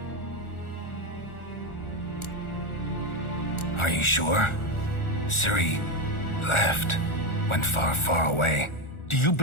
Are you sure? Ciri left. Went far, far away. Do you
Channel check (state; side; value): late; right; 1.4 ms